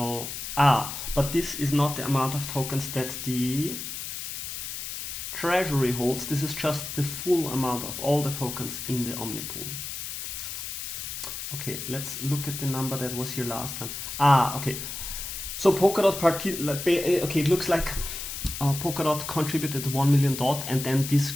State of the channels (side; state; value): left; noise; hiss, 6 dB below the sound